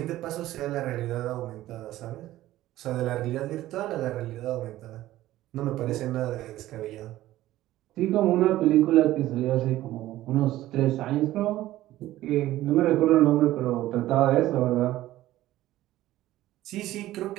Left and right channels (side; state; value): left; quieter; 15.1 dB